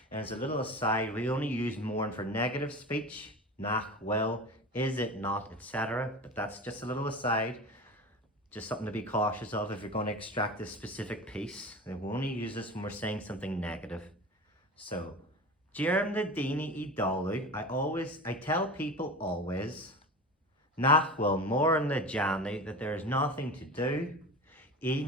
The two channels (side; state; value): both; normal; correlation 0.31